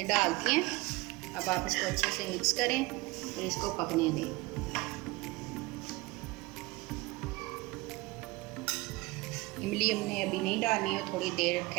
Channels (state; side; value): quieter; left; 22.5 dB